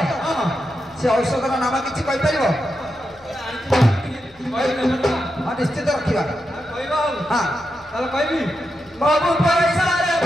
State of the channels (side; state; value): left; noise; hum, 29 dB below the sound